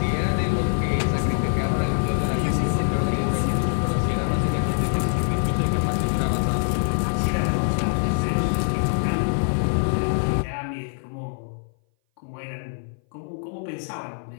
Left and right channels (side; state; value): right; silent; 59 dB below the other